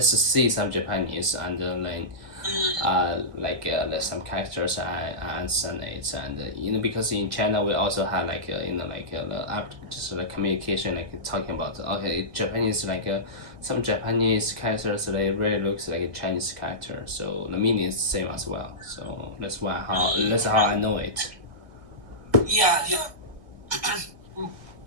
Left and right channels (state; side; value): late; left; 1.7 ms